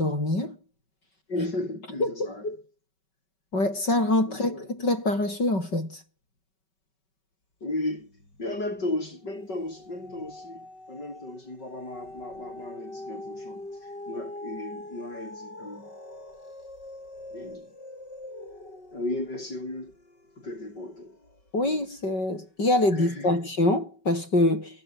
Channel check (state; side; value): late; right; 5.3 ms